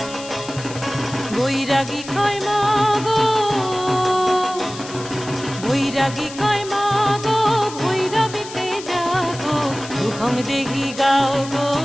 বৈরাগী কয় মাগো, বৈরাগী কয় মাগো, ভৈরবীতে যাগো, রূপং দেহি গাও গো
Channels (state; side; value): noise; left; hiss, 14 dB below the sound